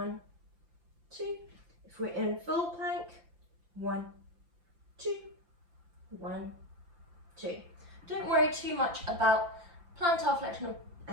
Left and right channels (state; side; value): late; left; 5.8 ms